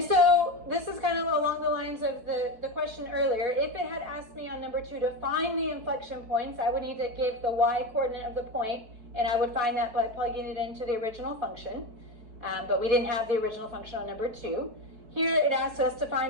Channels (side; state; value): left; late; 4.6 ms